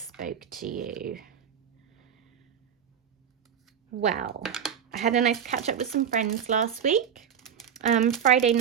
spoke to you? Well, I had a nice catch up with some friends last week. Friday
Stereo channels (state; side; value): quieter; left; 8.3 dB